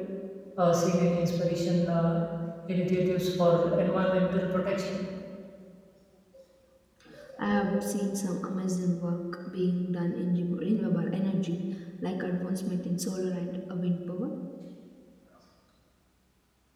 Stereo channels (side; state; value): both; identical; correlation 1.00